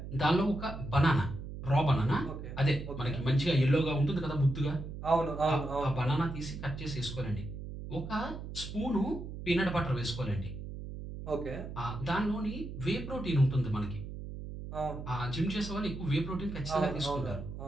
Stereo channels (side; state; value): right; noise; hum, 9 dB below the sound